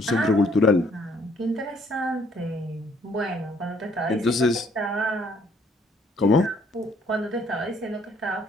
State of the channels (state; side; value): normal; both; correlation 0.64